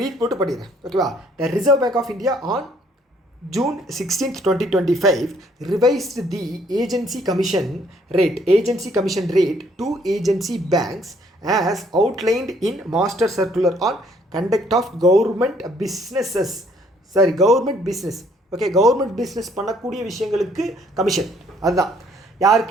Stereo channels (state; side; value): normal; both; correlation 0.64